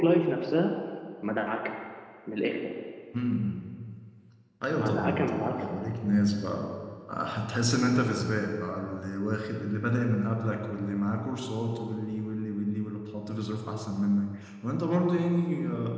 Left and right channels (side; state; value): both; identical; correlation 1.00